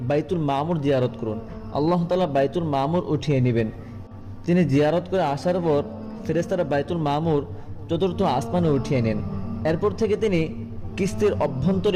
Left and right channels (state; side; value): identical; both; correlation 1.00